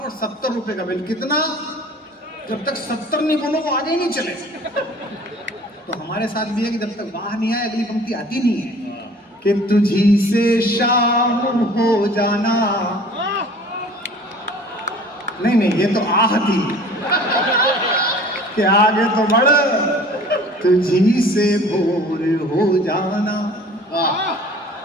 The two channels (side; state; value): both; normal; correlation 0.47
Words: 70 रुपए का बिल। कितना? जब तक 70 नहीं बोलो वो आगे ही नहीं चले। तो हमारे साथ भी है कि जब तक बाहर नहीं आए अगली पंक्ति आती नहीं है। कि तुझी से शाम हो जाना। नहीं ये तो आह थी कि आगे तो बढ़, तुझी से भोर हो जाना।